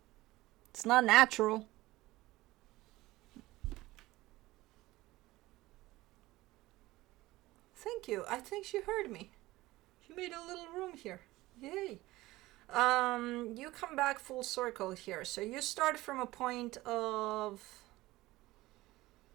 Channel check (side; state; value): left; quieter; 18.4 dB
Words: It's not natural. Thank you. I think she heard me. You made a little room here. Yay. You come back full circle here. So you start from a point of...